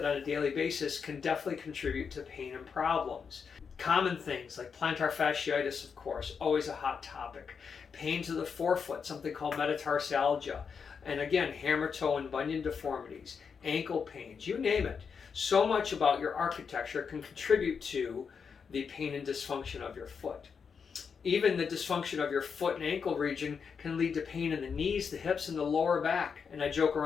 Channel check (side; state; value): right; quieter; 6.1 dB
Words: on a daily basis can definitely contribute to pain and problems. Common things like plantar fasciitis, of course, always a hot topic. Pain to the forefoot, something called metatarsalgia. And again, hammer toe and bunion deformities, ankle pains, you name it. So much about your architecture can contribute to the pain and dysfunction of your foot. Even the dysfunction of your foot and ankle region can lead to pain in the knees, the hips, and the lower back. And I joke